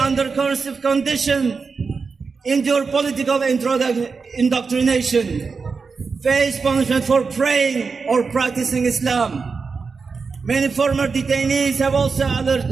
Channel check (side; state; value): left; quieter; 4.9 dB